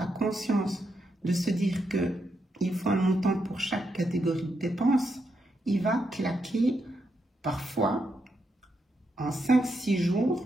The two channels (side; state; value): both; normal; correlation 0.82